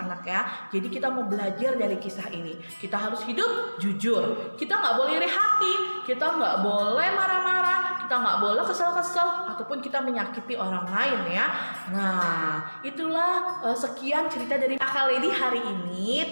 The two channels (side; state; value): both; inverted; correlation -1.00